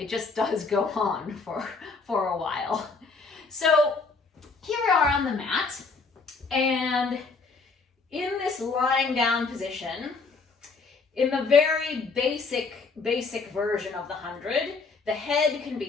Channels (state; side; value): quieter; right; 4.3 dB